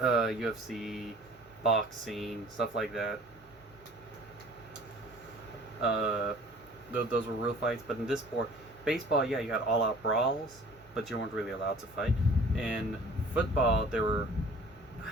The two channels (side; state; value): both; normal; correlation 0.48